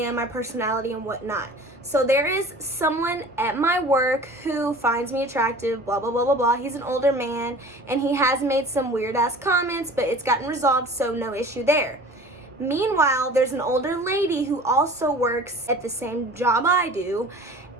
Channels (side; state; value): both; normal; correlation 0.43